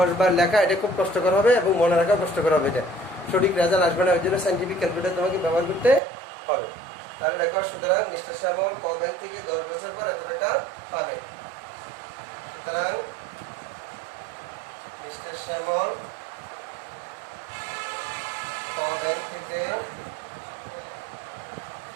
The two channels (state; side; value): drops out; left; at 6.0 s